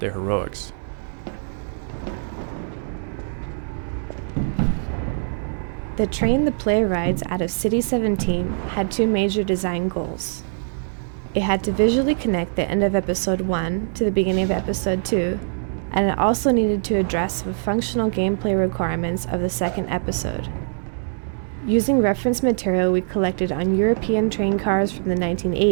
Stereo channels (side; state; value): left; silent; digital silence